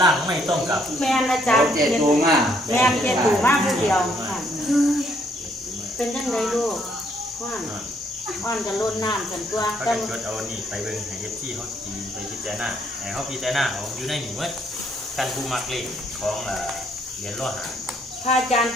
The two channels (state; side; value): normal; both; correlation 0.69